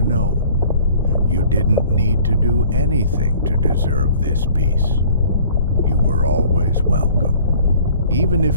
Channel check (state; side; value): inverted; both; correlation -0.52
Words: know you didn't need to do anything to deserve this peace. You were always welcome. Even